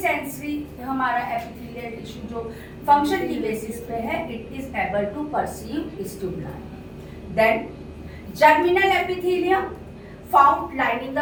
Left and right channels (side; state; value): both; identical; correlation 1.00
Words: हमारा एपिथेलियल टिश्यू जो फंक्शन की बेसिस पे है, it is able to perceive stimuli. Then germinal epithelium, found lining